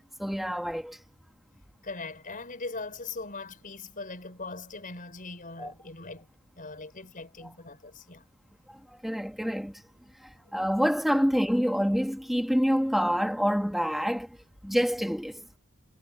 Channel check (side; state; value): both; normal; correlation 0.96